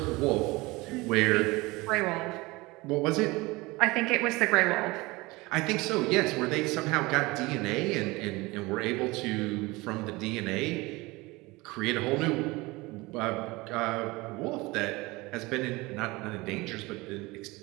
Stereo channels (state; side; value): quieter; left; 22.5 dB